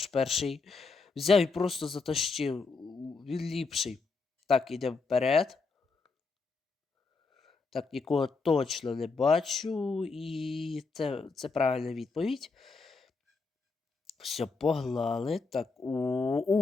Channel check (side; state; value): right; quieter; 4.3 dB